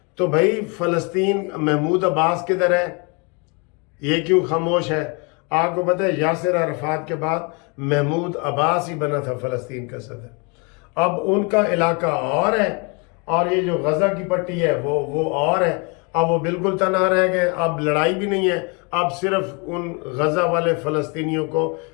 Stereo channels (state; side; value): quieter; right; 32.3 dB